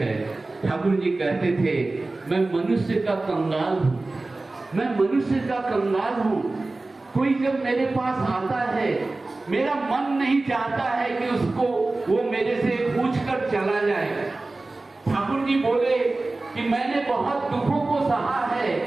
ठाकुर जी कहते थे मैं मनुष्य का कंगाल हूं, मैं मनुष्य का कंगाल हूं। कोई जब मेरे पास आता है, मेरा मन नहीं चाहता है कि उसको वो मेरे से पूछ कर चला जाए। ठाकुर जी बोले कि मैंने बहुत दुखों को सहा है,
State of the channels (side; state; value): left; quieter; 3.2 dB